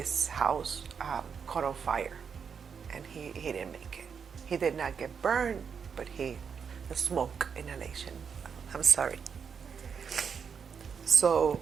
house caught on fire, and he didn't make it. He did not get burned, but the smoke inhalation. I'm sorry. So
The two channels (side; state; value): left; quieter; 6.5 dB